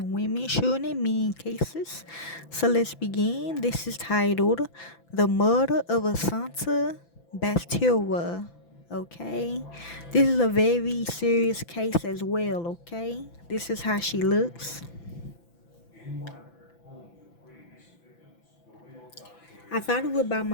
women, children, and men cases. So let's begin. This is titled The Murder of Asunta Basterra. Okay, this is a very serious case as well. Okay, this is how she looks. I thought it was about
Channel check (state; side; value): late; right; 5.9 ms